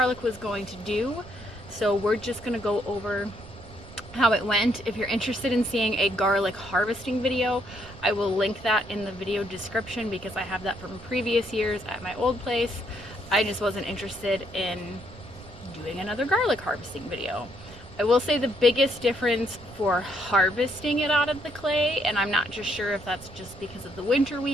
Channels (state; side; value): noise; right; rumble, 18 dB below the sound